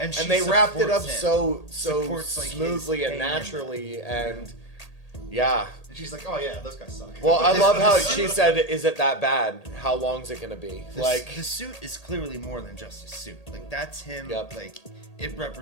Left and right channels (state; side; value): late; right; 1.8 ms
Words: she they wrapped it up supports him. so Supports, like, his smoothly and pain. naturally, and yeah. And she's like, oh yeah, those guys suck. Well, I love how she said, "Is it that bad? How long's it gonna be?" Like the suit is clearly more than just a suit. Like that's him. Yep. Like it